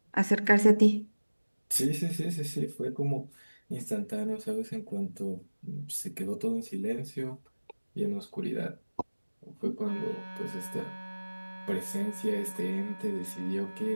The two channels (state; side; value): inverted; both; correlation -1.00